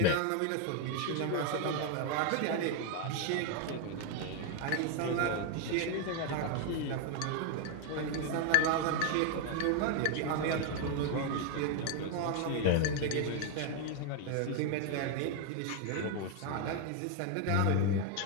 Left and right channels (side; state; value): both; different; correlation 0.01